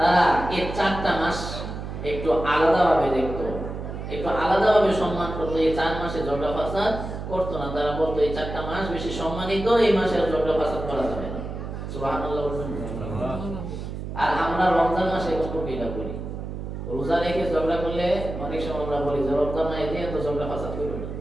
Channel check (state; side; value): noise; right; hum, 7 dB below the sound